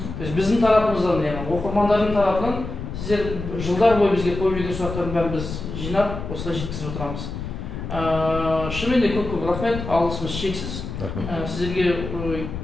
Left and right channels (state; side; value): noise; left; rumble, 7 dB below the sound